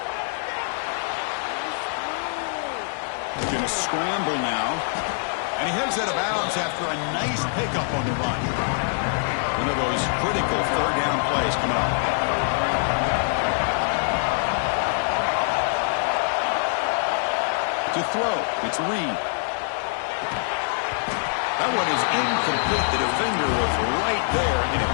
He's going to scramble now. And he heads out of bounds after a nice pickup on the run. One of those critical third down plays coming up. To throw, it's Reed. That one is incomplete. The defender was right there, and it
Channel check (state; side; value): silent; right; digital silence